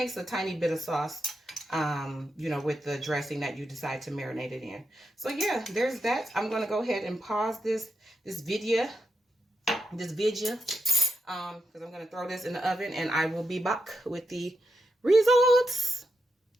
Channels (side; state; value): both; normal; correlation 0.86